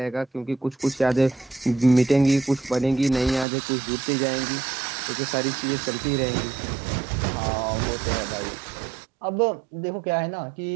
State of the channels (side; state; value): left; drops out; at 3.5 s